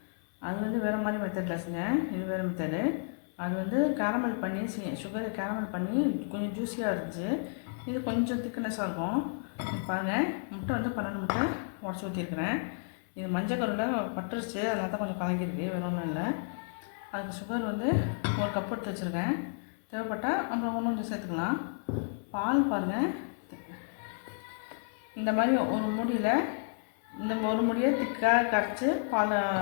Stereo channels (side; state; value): right; silent; 57 dB below the other